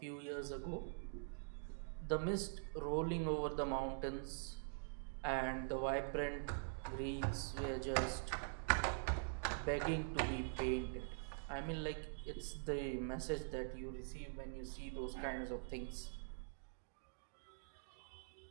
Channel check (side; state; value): left; silent; digital silence